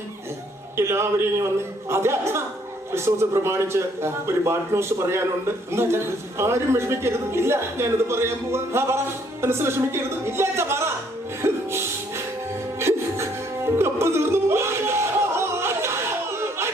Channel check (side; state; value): both; normal; correlation 0.66